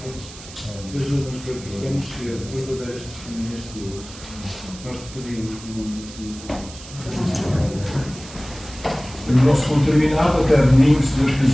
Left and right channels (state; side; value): noise; right; hiss, 16 dB below the sound